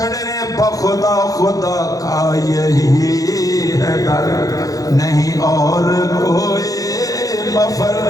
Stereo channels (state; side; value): late; right; 0.17 ms